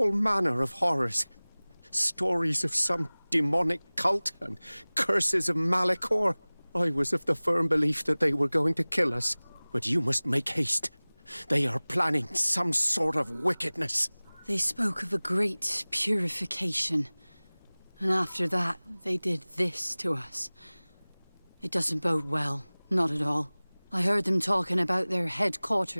manner of horrors. Stories of some demonic cult and curses of Malachor. I was of the firm belief that they were going to kill us. But you must make haste. They are planning some sort of wickedness. They spoke of a great purification. And after that, they did this to us. It doesn't bode well. Not at all. I heard them talking about their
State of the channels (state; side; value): inverted; both; correlation -1.00